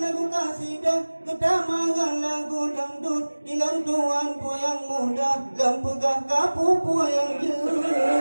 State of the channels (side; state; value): both; inverted; correlation -1.00